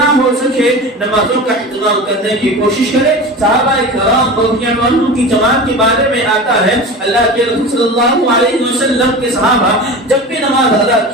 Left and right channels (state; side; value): normal; both; correlation 0.31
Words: ہو سکے نمازوں کا اہتمام کرنے کی کوشش کرے۔ صحابہ کرام رضی اللہ عنہم کی جماعت کے بارے میں آتا ہے اللہ کے رسول صلی اللہ علیہ وسلم کے صحابہ جب بھی نماز ادا